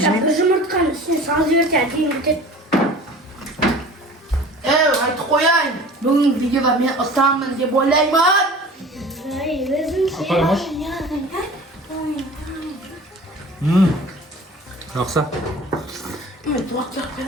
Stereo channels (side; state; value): both; normal; correlation 0.42